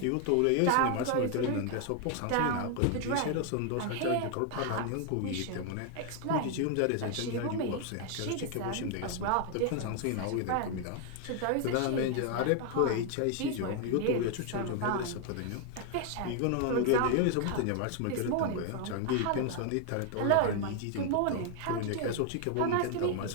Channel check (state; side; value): different; both; correlation 0.00